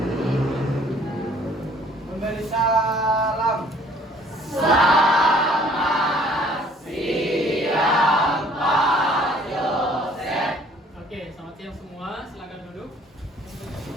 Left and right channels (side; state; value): both; normal; correlation 0.57